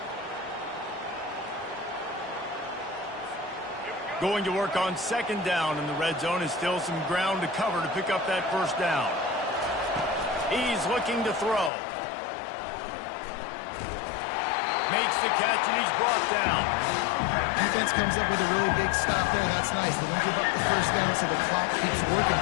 Going to work on second down in the red zone, and still some ground to cover to pick up that first down. He's looking to throw. Makes the catch, and he's brought down. Defense comes up with a really big stop there. That's nice. They don't give up the first down, so the clock keeps working,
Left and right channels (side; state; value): right; drops out; at 11.7 s